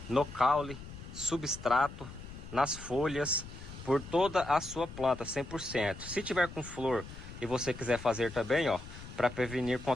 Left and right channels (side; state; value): left; noise; rumble, 13 dB below the sound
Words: no caule, substrato, nas folhas, por toda a sua planta, 100%. Se tiver com flor e você quiser fazer também, ó, para prevenir